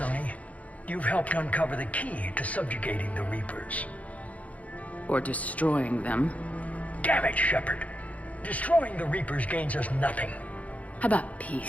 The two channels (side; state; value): right; late; 0.069 ms